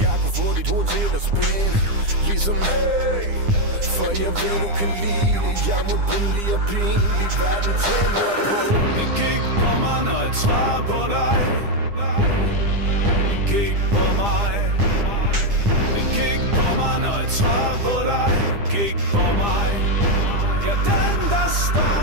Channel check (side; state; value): left; late; 9.9 ms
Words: Jeg kunne få dit hoved til at spænde ligesom hey, for jeg ved du kan lide det. Jeg må billig og pinlig, verden tænder på. Det gik på mig, når jeg svarer på dig. Det gik på mig. Det gik på mig, når jeg svarer på dig. Det gik på mig. Ja, den der står